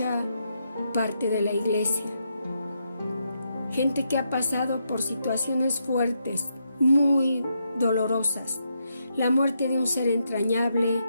parte de la iglesia. Gente que ha pasado por situaciones fuertes, muy dolorosas. La muerte de un ser entrañable,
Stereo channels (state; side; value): inverted; both; correlation -0.81